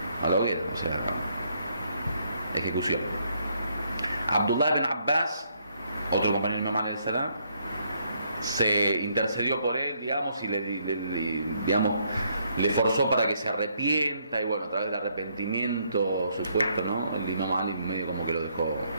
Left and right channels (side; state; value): both; inverted; correlation -0.72